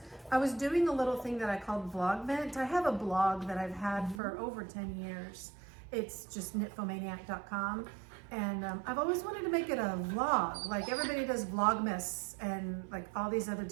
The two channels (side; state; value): left; drops out; at 4.2 s